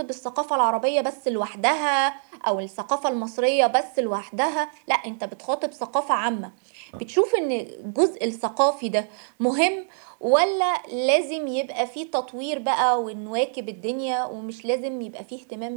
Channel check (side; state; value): left; silent; digital silence